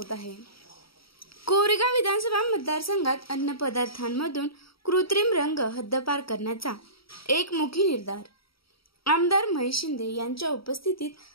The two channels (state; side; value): late; right; 0.75 ms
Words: आहे। कोरेगाव विधानसभा मतदारसंघात अन्न पदार्थांमधून कृत्रिम रंग हद्दपार करण्याचा एकमुखी निर्धार। आमदार महेश शिंदे यांच्या